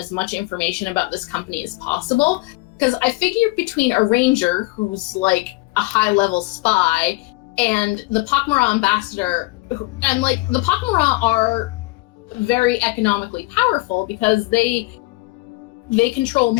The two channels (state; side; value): quieter; right; 22.6 dB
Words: much information about this company as possible, because I figure between a ranger who's like a high-level spy and the pak'ma'ra ambassador, and the pak'ma'ra are very economically powerful because they control